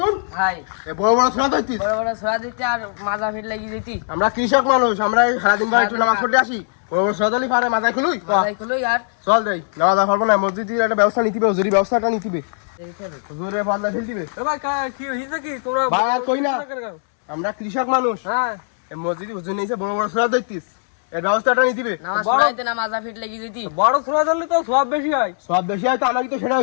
ভাই, এই বড় বড় ছোড়া ধরতিস। বড় বড় ছোড়া দিতে আর মাজা ফিট লাগিয়ে দিতি। আমরা কৃষক মানুষ, আমরা এই সারাদিন ভাই একটু নামাজ পড়তে আসি। বড় বড় ছোড়া দিলি পারে মাথায় খুলুই। মাথায় খুলুই আর চল যাই, নামাজ পড়বো না, মসজিদের একটা ব্যবস্থা নিতে হবে, হুজুরি ব্যবস্থাটা নিতে হবে। হুজুরের পাল্লা ফেল দিবে। ভাই কি হইছে কি তোমরা? ভাই আর কই না, আমরা কৃষক মানুষ। হ্যাঁ, এই মসজিদে হুজুর নিয়েছে বড় বড় ছোড়া ধরতিস, এর ব্যবস্থাটা নিতে হবে। নামাজ পড়াইতে না মাজা ফিট লাগিয়ে দিতি। বড় ছোড়া ধরলে তো সব বেশি হয়। সব বেশি হয় তো আমাকে তো সেটা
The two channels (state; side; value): silent; right; digital silence